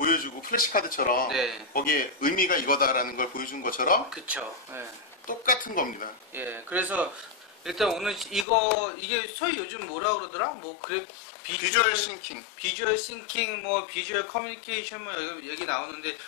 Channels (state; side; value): drops out; right; at 8.5 s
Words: 플래시카드처럼 네. 거기에 의미가 이거다라는 걸 보여준 것처럼 그쵸. 네. 똑같은 겁니다. 예, 그래서 일단 오늘 이게 소위 요즘 뭐라 그러더라? 비주얼 싱킹. 비주얼 싱킹, 뭐 비주얼 커뮤니케이션 뭐 여기 나오는데